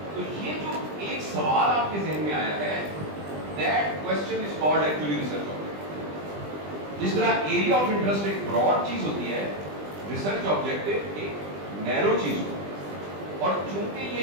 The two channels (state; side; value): late; left; 20 ms